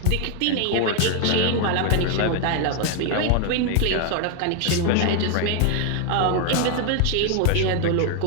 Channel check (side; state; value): both; different; correlation 0.01